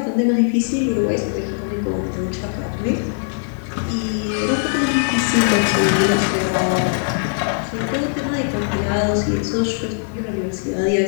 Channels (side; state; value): right; silent; digital silence